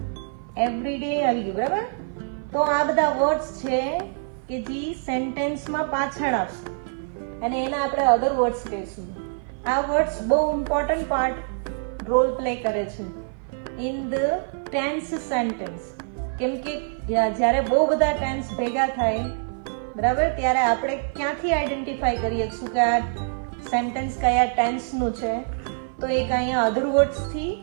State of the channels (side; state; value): left; silent; 55 dB below the other